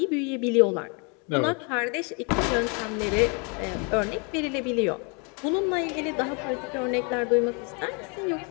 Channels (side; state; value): right; quieter; 34.5 dB